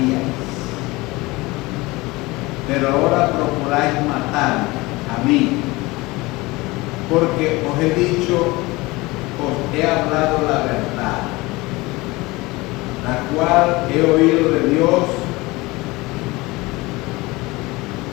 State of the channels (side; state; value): right; quieter; 22.0 dB